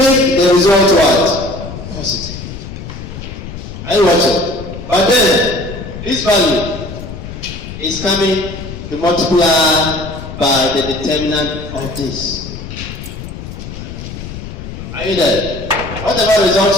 the result what? Positive. Are you watching? But then this value is coming to multiply by the determinant of this. Are you there? Whatever result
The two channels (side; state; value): left; noise; rumble, 10 dB below the sound